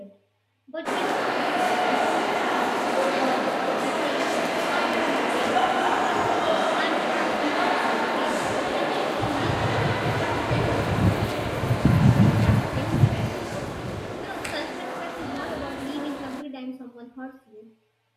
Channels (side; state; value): both; identical; correlation 1.00